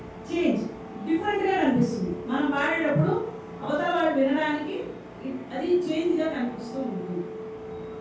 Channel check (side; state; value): both; identical; correlation 1.00